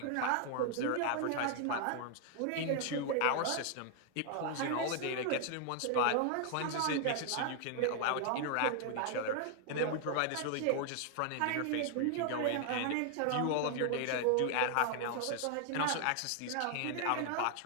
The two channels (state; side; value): different; both; correlation 0.00